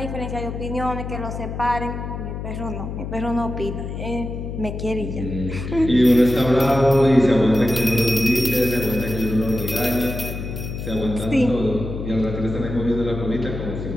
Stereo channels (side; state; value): left; noise; hum, 6 dB below the sound